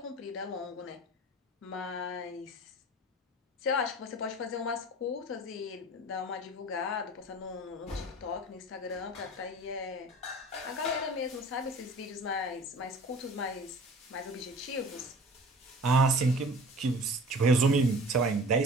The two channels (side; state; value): both; normal; correlation 0.43